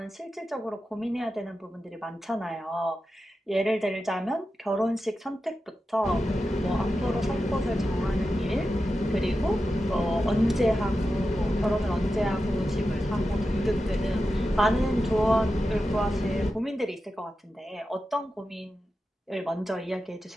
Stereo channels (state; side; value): normal; both; correlation 0.91